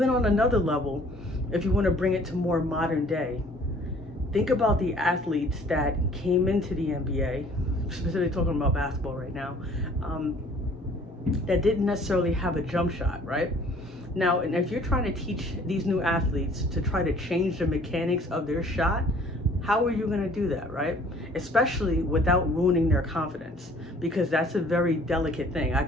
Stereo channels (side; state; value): both; normal; correlation 0.55